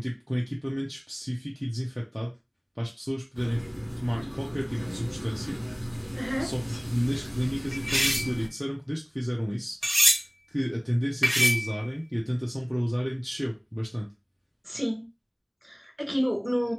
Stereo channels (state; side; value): identical; both; correlation 1.00